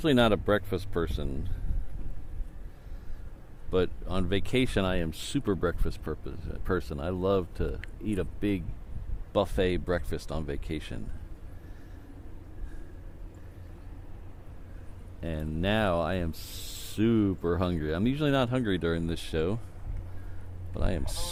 not a breakfast person, but on vacation I am super breakfast person. I love to eat a big buffet breakfast on vacation. And now I am super hungry. I'm usually not hungry during this show, but I am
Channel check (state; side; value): identical; both; correlation 1.00